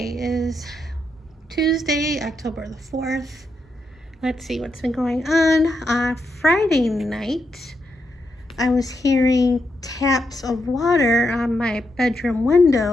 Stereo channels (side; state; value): both; normal; correlation 0.82